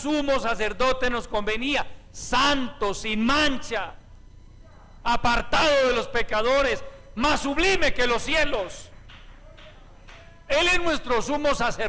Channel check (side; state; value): both; identical; correlation 1.00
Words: sacerdote nos convenía, santo, sin mancha, apartado de los pecadores, más sublime que los cielos. Él es nuestro sumo